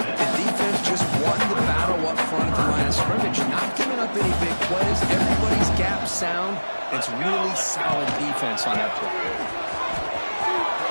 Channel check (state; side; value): inverted; both; correlation -1.00